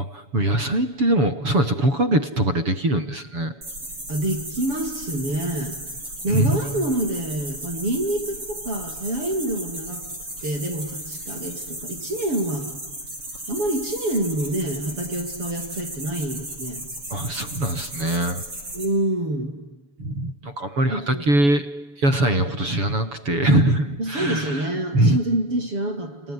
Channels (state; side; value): late; left; 7.1 ms